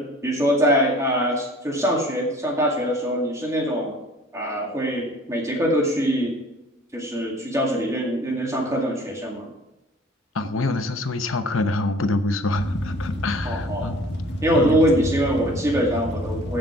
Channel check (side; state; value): both; normal; correlation 0.49